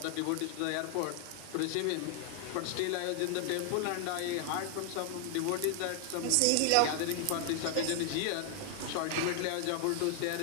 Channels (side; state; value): both; different; correlation 0.00